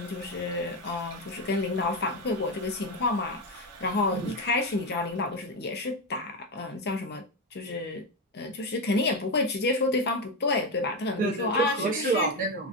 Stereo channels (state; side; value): normal; both; correlation 0.12